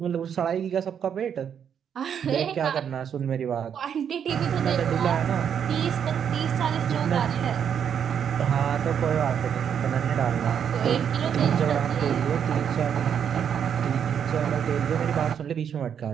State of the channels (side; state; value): left; quieter; 8.1 dB